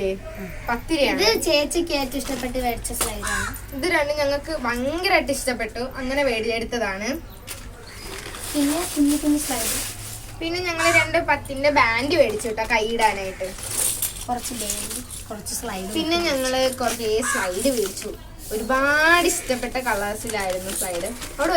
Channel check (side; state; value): both; identical; correlation 1.00